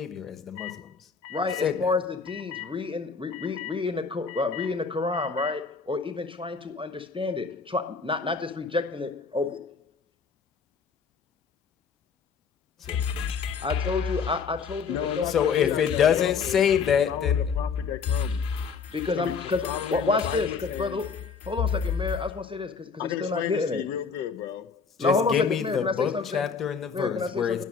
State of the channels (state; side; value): quieter; right; 5.6 dB